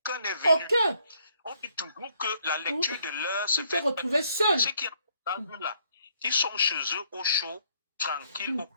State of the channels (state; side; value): inverted; both; correlation -0.68